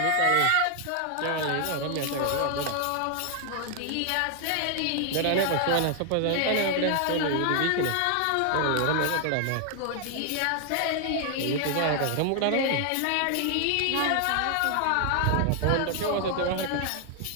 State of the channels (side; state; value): both; different; correlation 0.00